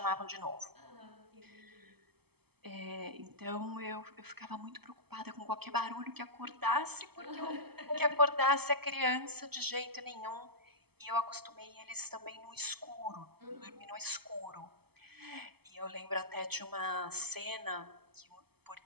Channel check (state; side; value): late; left; 0.97 ms